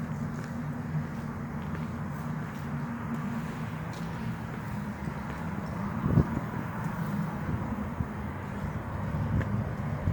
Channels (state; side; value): identical; both; correlation 1.00